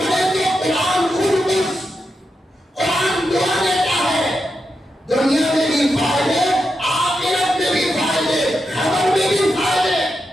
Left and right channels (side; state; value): both; normal; correlation 0.86